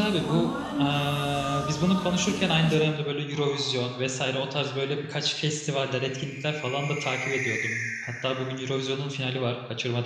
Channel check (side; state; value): both; identical; correlation 1.00